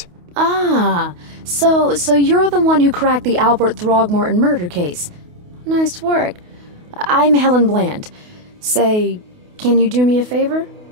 Ah, so you're the one who cracked the Albert Throgmorton murder case. Nice work. I'm Helen Bland. Say, can you do me a favor?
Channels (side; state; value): left; late; 28 ms